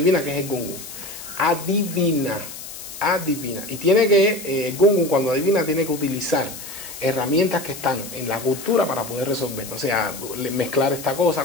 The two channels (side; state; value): left; noise; hiss, 12 dB below the sound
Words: que es el Gungun. Adivina. Y tiene que, el Gungun cuando adivina tiene que utilizar herramientas que están en la cultura para poder resolver, o sea, mezclar esta cosa